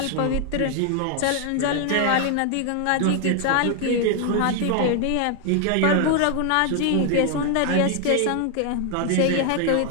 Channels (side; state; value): both; different; correlation 0.00